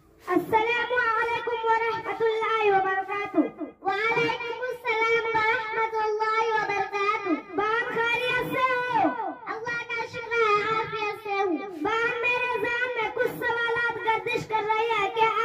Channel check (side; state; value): both; identical; correlation 1.00